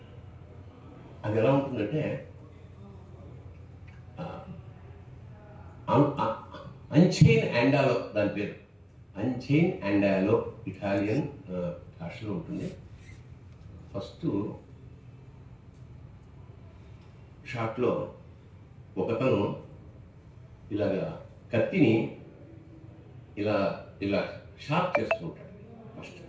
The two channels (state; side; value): identical; both; correlation 1.00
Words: ఎలా ఉంటుందంటే అంచైన్ అండాలో, దాని పేరు అంచైన్ అండాలో, ఇటాలియన్ భాషలో ఉంటుంది. ఫస్ట్ షాట్లో ఒకతను ఇలాగా కత్తిని ఇలా ఇలా షార్ప్ చేస్తూ ఉంటాడు ఫస్ట్,